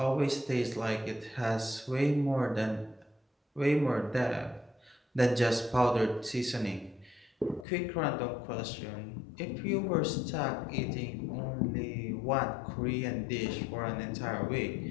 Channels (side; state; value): right; drops out; at 7.7 s